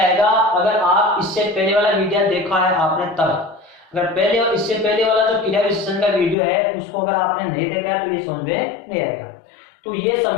अगर आप इससे पहले वाला वीडियो देखा है आपने तब। अगर पहले और इससे पहले वाला जो क्रिया विशेषण का वीडियो है उसको अगर आपने नहीं देखा है तो ये समझ में नहीं आएगा। तो ये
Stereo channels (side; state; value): right; drops out; at 6.4 s